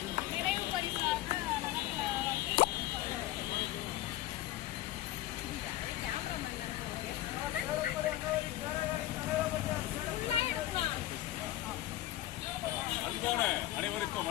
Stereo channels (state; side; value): quieter; right; 14.9 dB